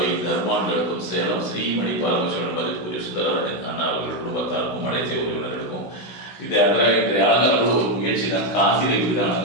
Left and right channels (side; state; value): right; late; 16 ms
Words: தர்மான்களுக்கும் சேலம் ஸ்ரீமணி பார்வசனபதற்குரிய சுந்தராஜன் அண்ணா அவர்கள் குடும்பத்தாருக்கும் அனைத்து உறவினர்களுக்கும் இது இன்றைய அலங்காரம் ஒரு முயற்சி தான். காசியில் இப்படிதான்